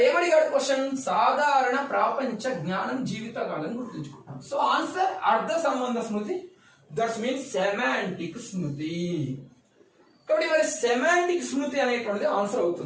ఏమడిగాడు క్వశ్చన్? సాధారణ ప్రాపంచ జ్ఞానం జీవితకాలం గుర్తుంచుకుంటాం. సో ఆన్సర్ అర్థ సంబంధ స్మృతి, దట్స్ మీన్స్ సెమాంటిక్ స్మృతి. కాబట్టి మరి సెమాంటిక్ స్మృతి అనేటువంటిది ఆన్సర్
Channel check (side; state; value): both; identical; correlation 1.00